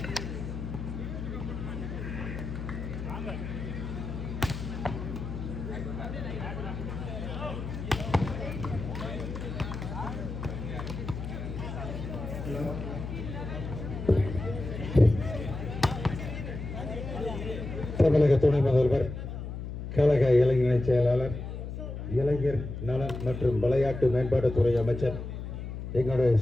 தமிழக துணை முதல்வர், கழக இளைஞர் செயலாளர், இளைஞர் நலன் மற்றும் விளையாட்டு மேம்பாட்டுத்துறை அமைச்சர், எங்களுடைய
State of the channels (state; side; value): noise; left; hum, 7 dB below the sound